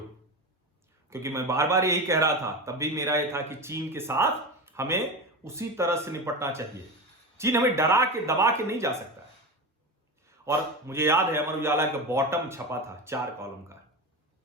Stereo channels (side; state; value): both; normal; correlation 0.23